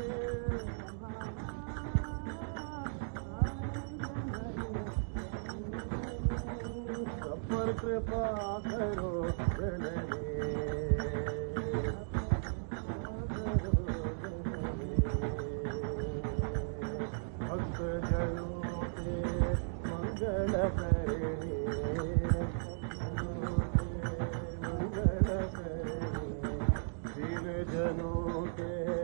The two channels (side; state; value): left; silent; digital silence